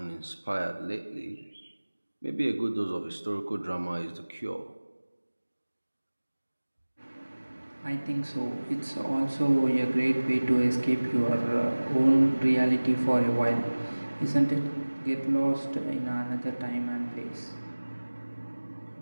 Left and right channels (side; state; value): both; inverted; correlation -1.00